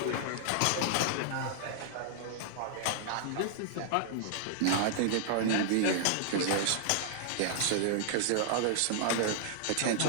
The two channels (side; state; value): both; different; correlation -0.01